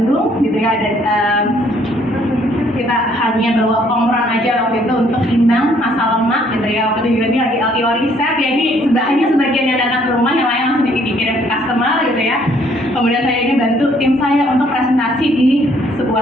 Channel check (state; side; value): normal; both; correlation 0.64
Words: gitu ya. Ada kita hanya bawa komron aja waktu itu untuk timbang masa lemak, gitu ya. Waktu itu ini lagi LTO riset, ya ini hanya sebagian yang datang ke rumah, yang lain langsung dikirim ke customer, gitu ya. Kemudian saya ini bantu tim saya untuk presentasi di